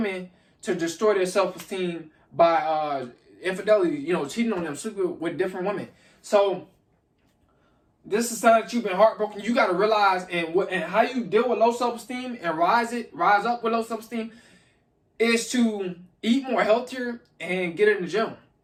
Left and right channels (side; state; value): both; identical; correlation 1.00